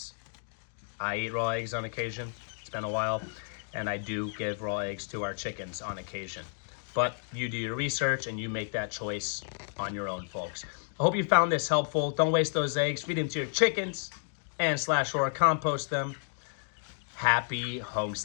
I eat raw eggs on occasion. It's been a while, and I do give raw eggs to our chickens on occasion. But you do your research and you make that choice on your own, folks. I hope you found this helpful. Don't waste those eggs. Feed them to your chickens and/or compost them. Happy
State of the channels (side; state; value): right; silent; digital silence